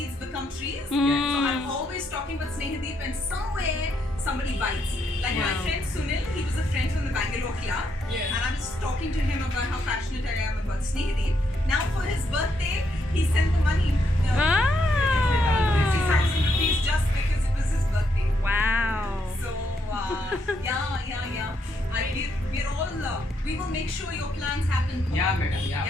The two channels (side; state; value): both; normal; correlation 0.77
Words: become trees. So I'm always talking about Sneehadeep and somewhere somebody bites. Like my friend Sunil, he was a friend from the Bangalore club. Yeah. And I was talking to him about how passionate I am about Sneehadeep. Now for his birthday, he sent the money. 60,000 rupees just because it was his birthday. Wow. So, yeah. We're all, we will make sure your plans happen. Yeah, madam, yeah.